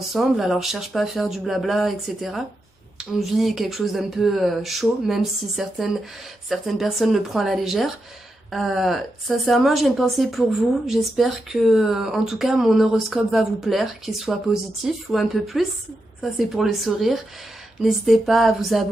Alors je cherche pas à faire du blabla, etc. On vit quelque chose d'un peu chaud, même si certaines personnes le prennent à la légère. Sincèrement, j'ai une pensée pour vous. J'espère que, en tout cas, mon horoscope va vous plaire, qu'il soit positif ou un peu plus. Ça, c'est pour le sourire. N'hésitez pas à vous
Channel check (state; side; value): normal; both; correlation 0.86